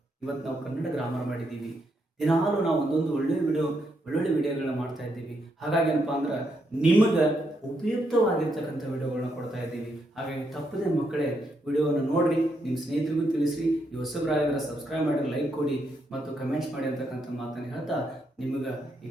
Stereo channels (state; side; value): normal; both; correlation 0.78